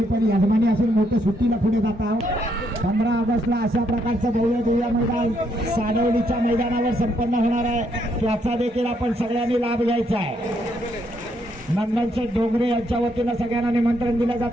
पण यजमानी असून मोठ्या सुट्टीला पुढे जाता. 15 ऑगस्टला अशा प्रकारचं भव्य मैदान साडवलीच्या मैदानावर संपन्न होणार आहे. त्याचा देखील आपण सगळ्यांनी लाभ घ्यायचा आहे. नंदनशेठ डोंगरे यांच्या वतीनं सगळ्यांना निमंत्रण दिलं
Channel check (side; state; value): both; normal; correlation 0.74